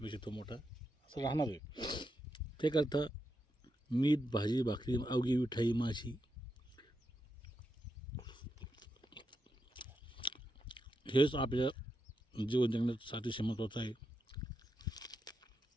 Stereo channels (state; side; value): normal; both; correlation 0.85